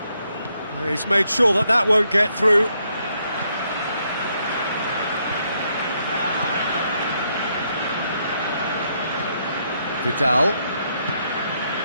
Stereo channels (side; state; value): both; inverted; correlation -0.76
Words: He's made sure that that won't get through. Vidal.